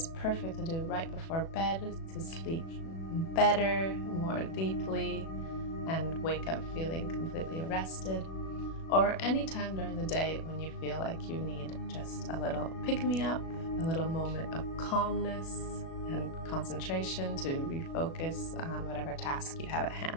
perfect to do right before bed to sleep better, more deeply, and wake up feeling completely rested. Or any time during the day when you feel like you need just a little pick-me-up, a little moment of calmness and concentration to refocus on whatever task you have at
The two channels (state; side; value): late; right; 36 ms